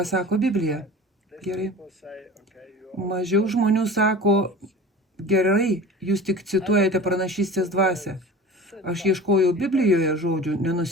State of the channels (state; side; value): normal; both; correlation 0.38